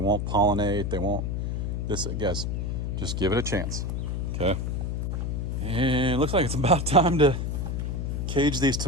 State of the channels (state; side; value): noise; left; hum, 1 dB below the sound